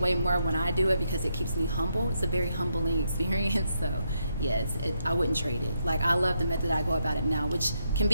way more when I do it because it keeps me humble. It's a very humbling experience. So yeah, I wouldn't trade it. Like, I love the method I go about it now, which can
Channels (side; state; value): both; inverted; correlation -0.79